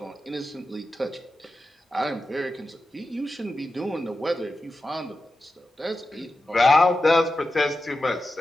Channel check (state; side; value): normal; both; correlation 0.91